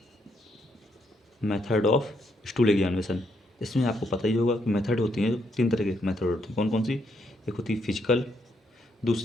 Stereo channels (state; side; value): normal; both; correlation 0.76